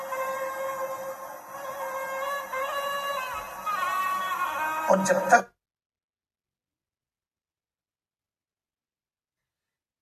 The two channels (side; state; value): both; identical; correlation 1.00